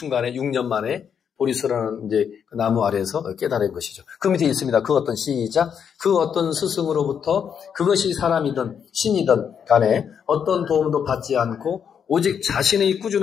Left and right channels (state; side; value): quieter; right; 7.6 dB